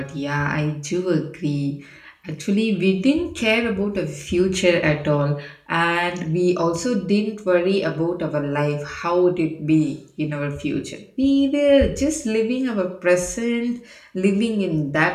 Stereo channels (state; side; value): identical; both; correlation 1.00